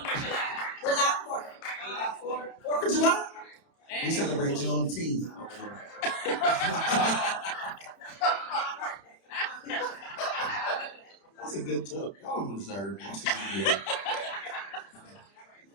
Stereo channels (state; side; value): late; right; 30 ms